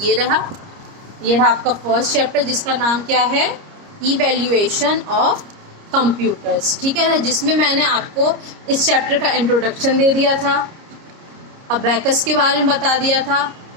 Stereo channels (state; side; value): late; left; 30 ms